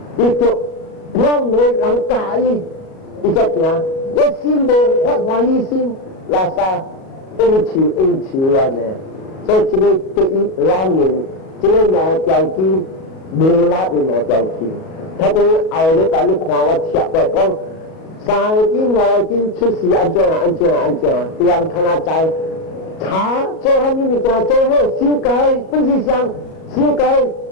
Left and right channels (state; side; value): late; right; 37 ms